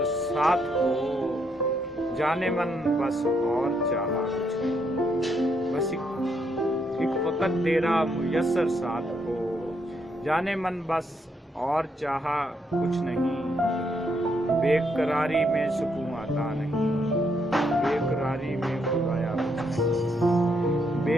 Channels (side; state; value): both; normal; correlation 0.76